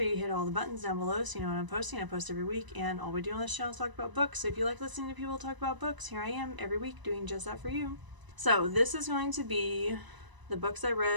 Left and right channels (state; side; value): late; left; 1.0 ms